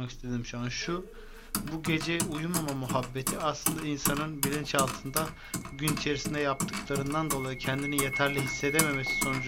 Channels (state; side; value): identical; both; correlation 1.00